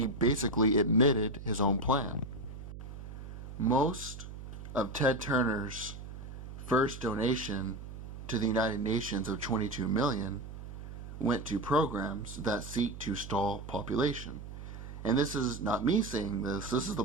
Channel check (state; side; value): noise; right; hum, 11 dB below the sound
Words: basically admitted his own plan. Most of Ted Turner's first donation to the United Nations of 22 million went to programs that seek to stall population. And this is not me saying this. This is the